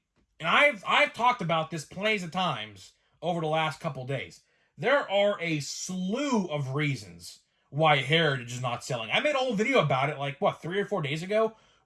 And I've talked about this plenty of times over the last couple days. There are a slew of reasons why Heritage is not selling. I made a whole video about it 3 or 4 days ago,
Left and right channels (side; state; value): both; identical; correlation 1.00